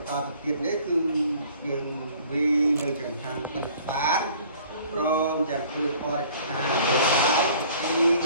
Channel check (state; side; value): inverted; both; correlation -0.53